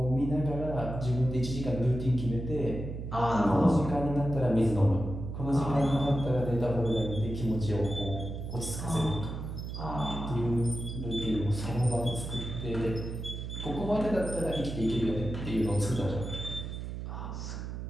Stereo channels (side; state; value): right; noise; hum, 6 dB below the sound